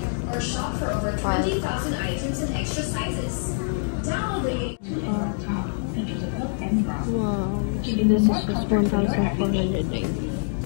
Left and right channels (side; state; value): right; silent; digital silence